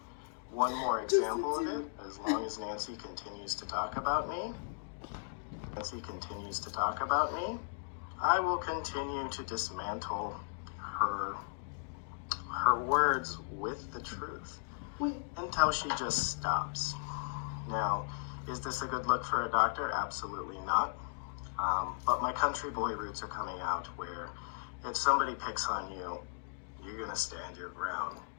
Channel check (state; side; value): silent; right; digital silence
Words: one more example of it. As long as Nancy continues to talk about me, I will continue to dismantle her words with the truth until she just stops. Now, is this a good look for a doctor? Absolutely not. But my country boy roots are coming out, where if somebody picks on you, you're going to stand your ground.